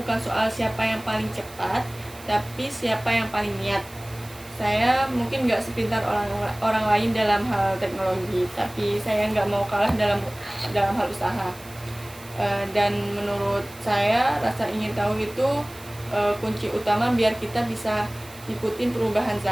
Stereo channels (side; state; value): right; noise; hiss, 21 dB below the sound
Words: soal siapa yang paling cepat, tapi siapa yang paling niat. Saya mungkin nggak sepintar orang lain dalam hal teknologi, tapi saya nggak mau kalah dalam hal usaha. Dan menurut saya rasa ingin tahu itu kunci utama biar kita bisa ikutin perubahan